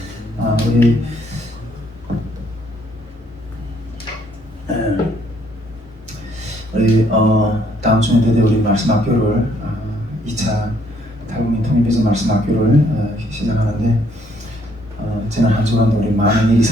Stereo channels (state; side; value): normal; both; correlation 0.67